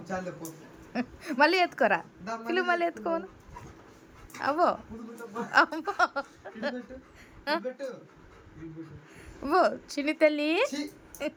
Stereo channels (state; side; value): identical; both; correlation 1.00